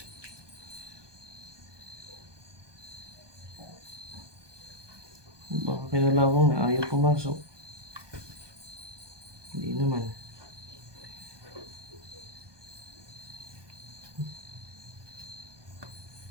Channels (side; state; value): left; late; 1.2 ms